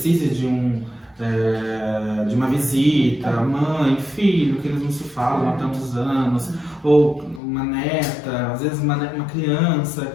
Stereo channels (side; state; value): right; drops out; at 7.4 s